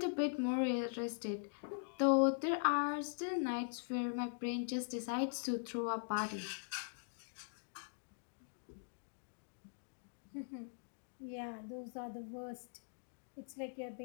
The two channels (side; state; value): right; silent; digital silence